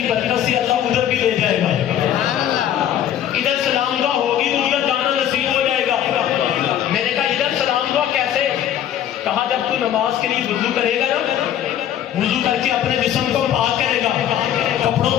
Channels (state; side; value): quieter; right; 10.7 dB